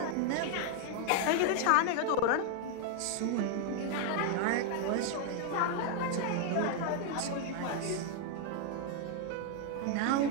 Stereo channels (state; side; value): different; both; correlation 0.00